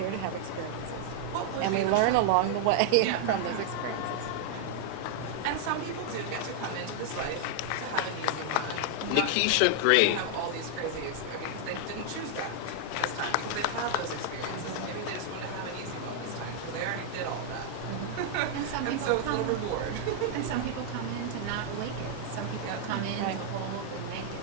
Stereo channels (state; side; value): different; both; correlation -0.01